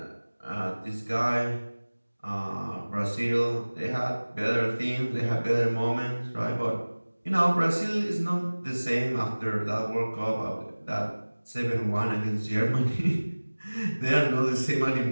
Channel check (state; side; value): inverted; both; correlation -1.00